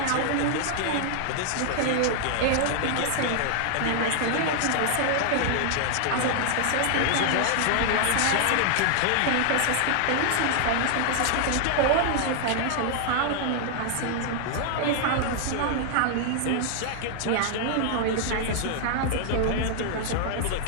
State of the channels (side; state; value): both; different; correlation -0.01